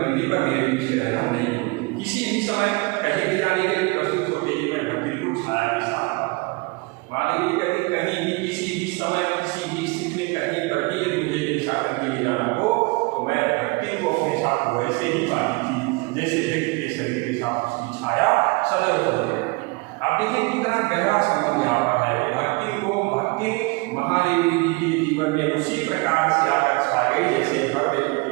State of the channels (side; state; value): left; quieter; 26.7 dB